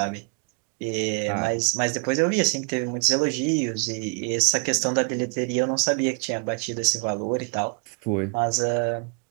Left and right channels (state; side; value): quieter; left; 38.3 dB